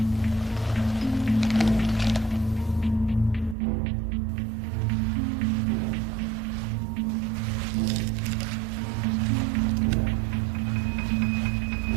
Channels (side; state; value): left; drops out; at 3.6 s